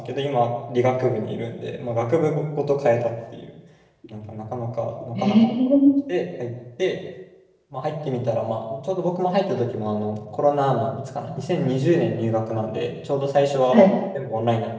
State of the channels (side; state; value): both; identical; correlation 1.00